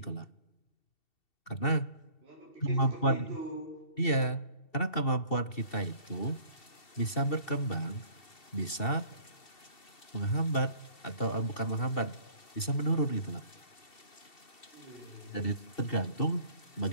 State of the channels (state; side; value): late; right; 2.7 ms